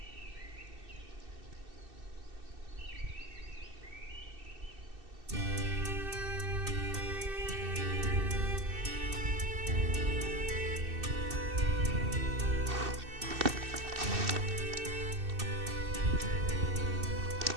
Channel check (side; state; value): left; late; 2.6 ms